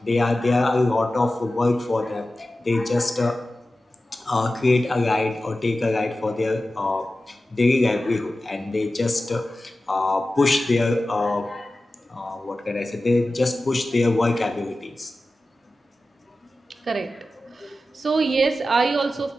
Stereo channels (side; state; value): both; normal; correlation 0.94